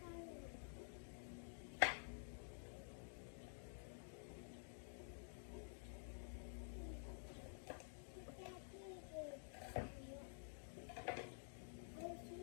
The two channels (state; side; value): silent; right; digital silence